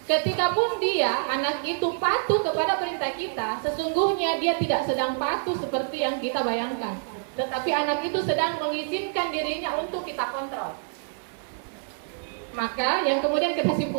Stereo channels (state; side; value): silent; left; digital silence